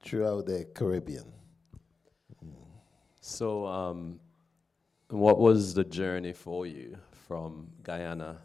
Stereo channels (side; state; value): right; quieter; 4.4 dB